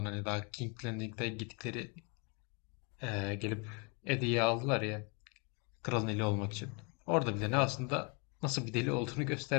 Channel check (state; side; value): quieter; right; 32.8 dB